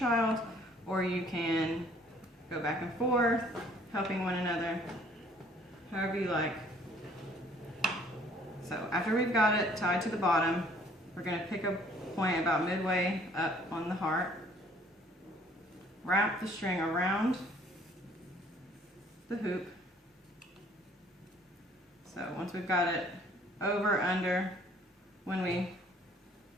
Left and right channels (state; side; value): normal; both; correlation 0.58